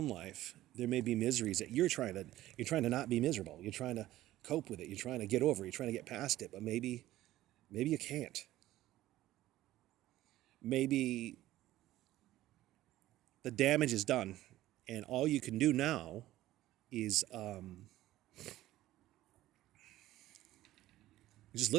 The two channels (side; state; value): left; quieter; 15.0 dB